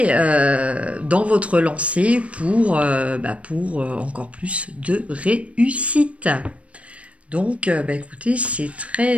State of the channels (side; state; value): left; late; 0.063 ms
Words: dans votre lancée pour encore plus de réussite. Donc, écoutez, c'est